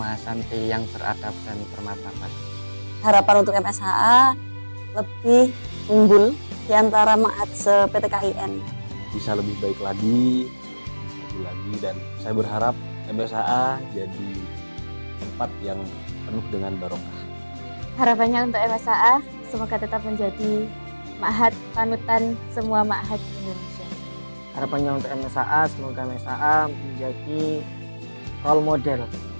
yang beradab dan bermartabat. Harapan untuk MSAA lebih unggul di antara ma'had se-PTKIN. Bisa lebih baik lagi, dan saya berharap MSAA jadi tempat yang penuh dengan barokah. Harapannya untuk MSAA semoga tetap menjadi ma'had panutan semua ma'had di Indonesia. Harapannya untuk MSA, semoga MSA menjadi role model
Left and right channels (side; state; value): both; inverted; correlation -1.00